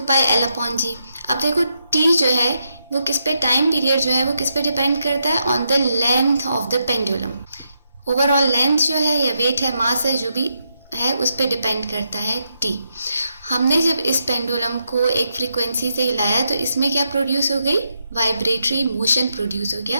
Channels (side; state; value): both; inverted; correlation -0.81